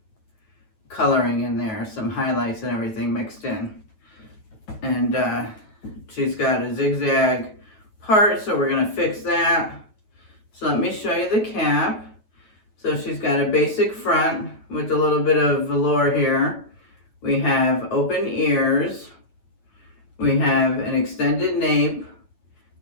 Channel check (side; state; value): right; late; 9.2 ms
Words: coloring in there, some highlights and everything mixed in. And she's got a zigzag part, so we're gonna fix that. So let me show you the cap. So she's got a basic front with a little bit of velour here. We have open ears. We have an extended nape